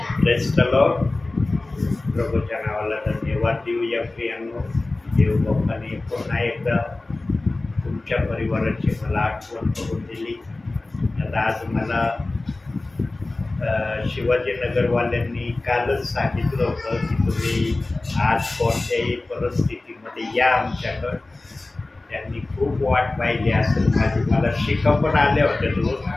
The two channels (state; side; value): quieter; right; 3.1 dB